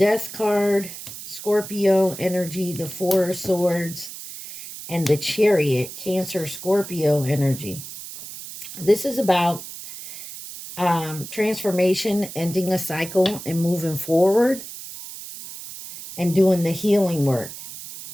card, Scorpio energy, the Four of Swords, and the Chariot, Cancer, Scorpio energy. This is about transformation, ending a cycle and moving forward and doing the healing work,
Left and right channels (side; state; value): right; noise; hiss, 12 dB below the sound